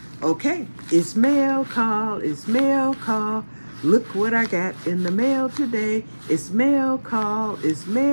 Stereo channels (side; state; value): both; inverted; correlation -1.00